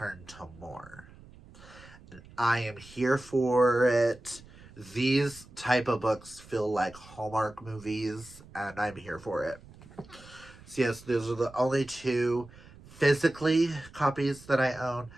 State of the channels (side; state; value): right; noise; rumble, 21 dB below the sound